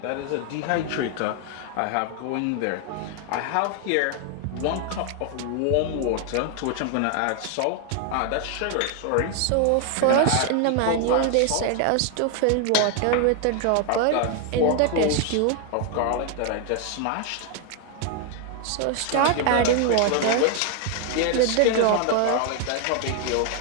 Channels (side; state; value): both; different; correlation 0.00